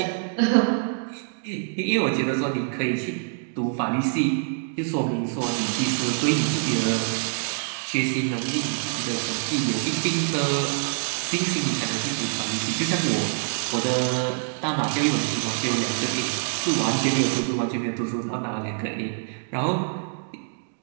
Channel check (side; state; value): left; silent; digital silence